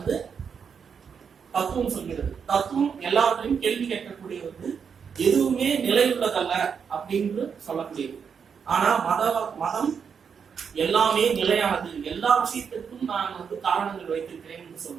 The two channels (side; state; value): left; quieter; 6.7 dB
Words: தத்துவம் சொல்கிறது. தத்துவம் எல்லாத்தையும் கேள்வி கேட்கக்கூடியது, எதுவுமே நிலையுள்ளதல்ல அப்படின்னு சொல்லக்கூடியது. ஆனா மதம் எல்லாமே நிலையானது, எல்லா விஷயத்திற்கும் நான் வந்து காரணங்கள் வைத்திருக்கிறேன் என்று